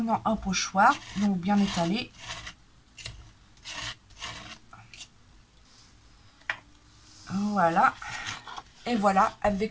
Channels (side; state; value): both; identical; correlation 1.00